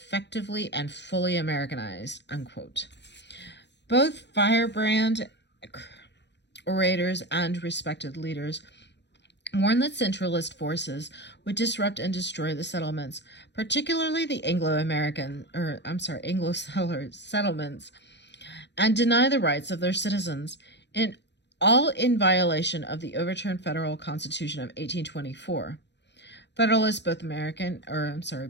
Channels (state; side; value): late; right; 0.51 ms